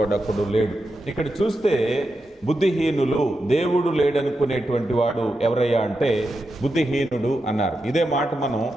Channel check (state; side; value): normal; both; correlation 0.88